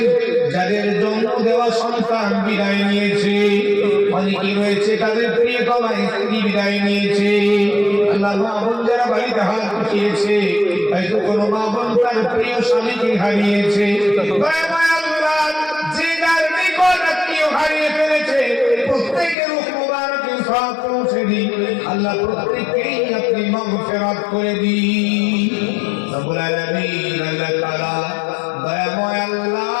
যাদের জন্ম দেওয়া সন্তান বিদায় নিয়েছে, অনেকেই রয়েছে তাদের প্রিয়তমা স্ত্রী বিদায় নিয়েছে। আল্লাহ মা বোন যারা বাড়িতে হাত উঠিয়েছে, হয়তো কোনো মা বোন তার প্রিয় স্বামীকে হারিয়েছে, যে যার নিকট আত্মীয় হারিয়ে ফেলেছে, প্রত্যেকের রূহ মুবারকে সওয়াব পৌঁছে দিন। আল্লাহ প্রত্যেককেই আপনি মাগফিরাত করে দিন। রব্বুল আলামিন, আল্লাহ তাআলা দয়াময় আল্লাহ,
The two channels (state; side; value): drops out; right; at 19.4 s